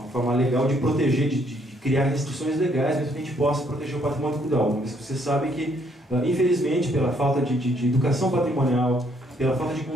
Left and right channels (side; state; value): both; normal; correlation 0.68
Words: forma legal de proteger, de criar restrições legais, para que a gente possa proteger o patrimônio cultural. Mas você sabe que, infelizmente, pela falta de educação patrimonial, pela falta de